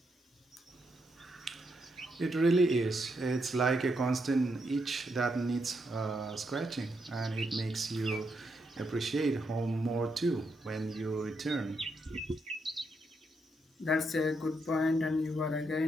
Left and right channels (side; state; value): both; normal; correlation 0.80